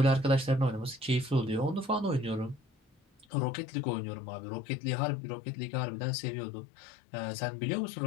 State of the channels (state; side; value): drops out; right; at 3.2 s